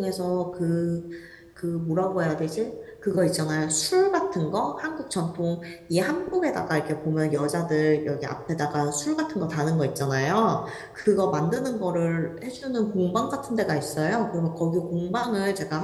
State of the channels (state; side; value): identical; both; correlation 1.00